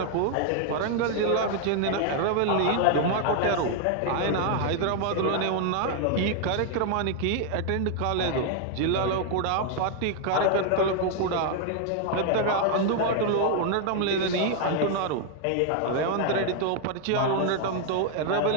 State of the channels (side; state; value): both; different; correlation 0.00